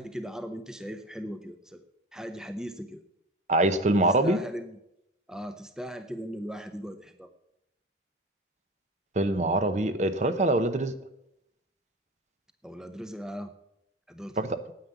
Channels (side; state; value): both; normal; correlation 0.31